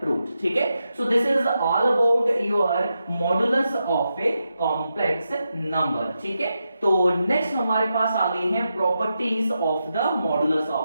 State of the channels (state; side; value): inverted; both; correlation -0.87